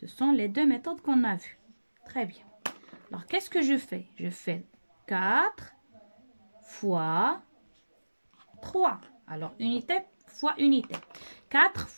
sont les deux méthodes qu'on a vues. Très bien. Alors, qu'est-ce que je fais? Je fais 4 fois 3. Alors, unité fois unité. 4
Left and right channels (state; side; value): inverted; both; correlation -1.00